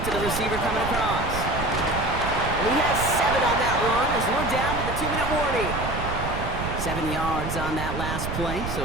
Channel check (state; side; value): noise; right; rumble, 5 dB below the sound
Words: to the receiver coming across. And he has 7 on that run as we're down to the 2-minute warning. 7 yards on that last play,